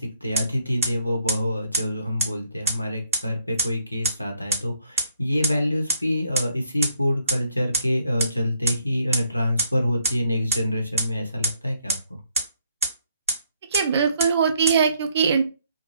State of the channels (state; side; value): inverted; both; correlation -0.72